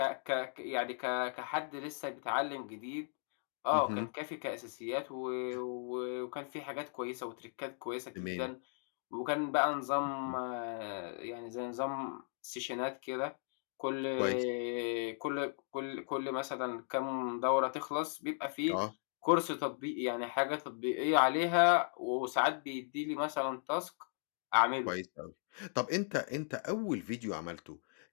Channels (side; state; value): right; silent; 53 dB below the other